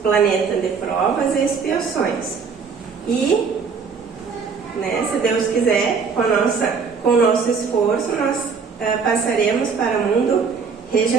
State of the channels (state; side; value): quieter; left; 5.5 dB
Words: planeta de provas e expiações. E, né, se Deus quiser, com o nosso esforço, nós passaremos para o mundo